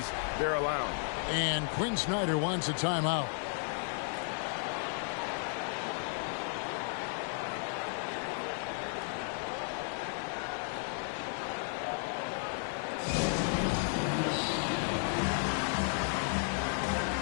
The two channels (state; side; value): silent; right; 55 dB below the other